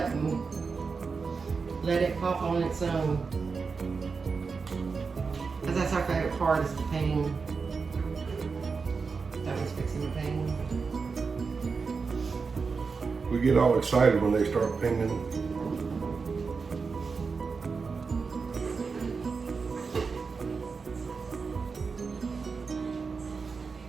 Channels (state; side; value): quieter; left; 4.9 dB